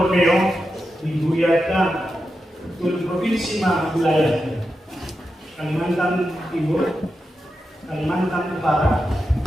di Ruyata, tulad provinsi mga wilayah. Kalimantan Timur, Kalimantan Utara,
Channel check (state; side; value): normal; both; correlation 0.89